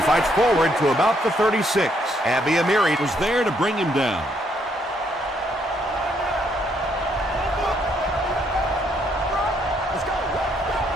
fights forward to about the 36. Abby Amiri was there to bring him down.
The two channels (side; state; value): both; normal; correlation 0.71